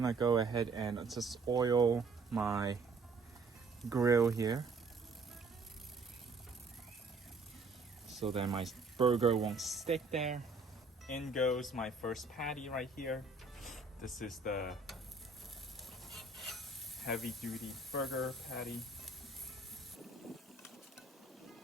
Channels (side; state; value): left; quieter; 3.7 dB